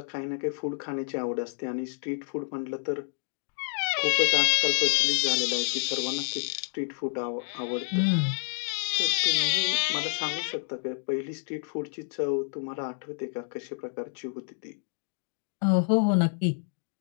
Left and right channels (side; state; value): right; silent; digital silence